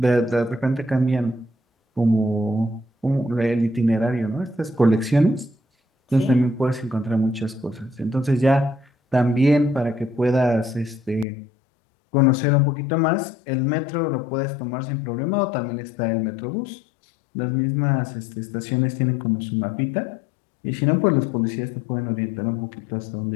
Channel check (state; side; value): drops out; right; at 11.2 s